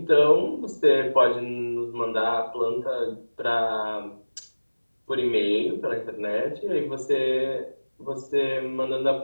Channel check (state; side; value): inverted; both; correlation -1.00